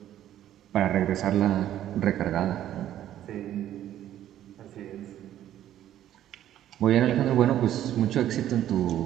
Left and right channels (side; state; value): left; quieter; 11.9 dB